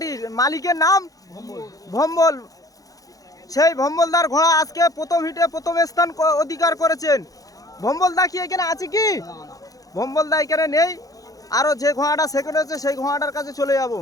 মালিকের নাম ভম্বল। সেই ভম্বলদার ঘোড়া আজকে প্রথম হিটে প্রথম স্থান অধিকার করেছেন। ভম্বলদা কি এখানে আছে কি? ভম্বলদা এখানে নেই। আরো যে ঘোড়াটা সেকেন্ড হয়েছে সেই ঘোড়াটার কাছে চলে যাব।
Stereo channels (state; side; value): late; right; 0.17 ms